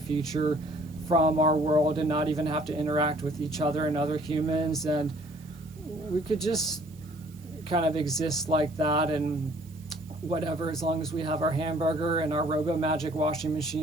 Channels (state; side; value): noise; right; hiss, 27 dB below the sound